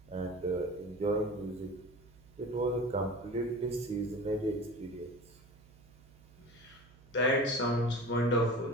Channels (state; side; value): noise; right; hum, 24 dB below the sound